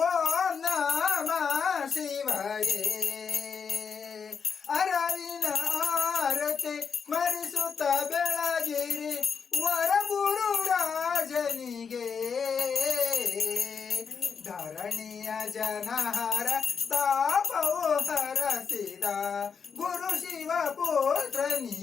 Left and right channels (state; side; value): quieter; right; 6.2 dB